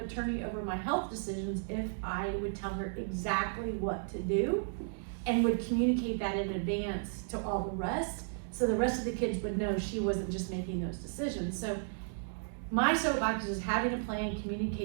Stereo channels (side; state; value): left; silent; digital silence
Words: attorney over my health decisions if I would tell her exactly what to do and would communicate that in advance to all the rest. So the rest of the kids would know she wasn't just making those decisions. So my soapbox is having a plan,